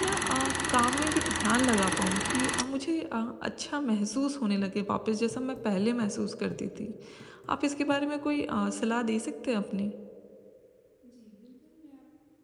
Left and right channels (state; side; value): identical; both; correlation 1.00